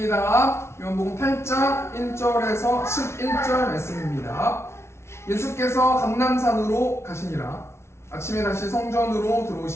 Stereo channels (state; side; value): late; right; 0.13 ms